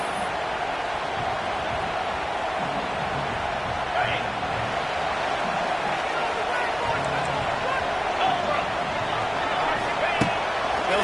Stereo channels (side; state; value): both; identical; correlation 1.00